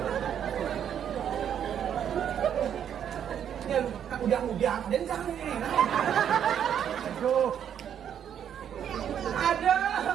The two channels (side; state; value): left; quieter; 9.0 dB